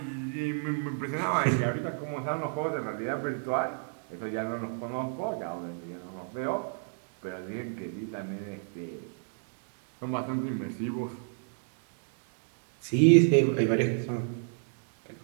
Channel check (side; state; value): left; silent; 57 dB below the other